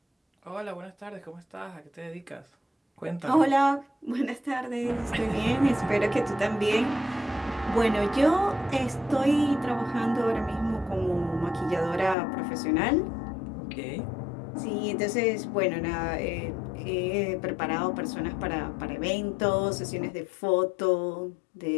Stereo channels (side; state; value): right; drops out; at 12.2 s